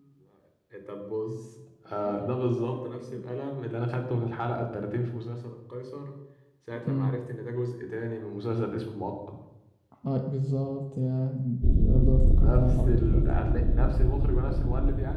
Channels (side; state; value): both; identical; correlation 1.00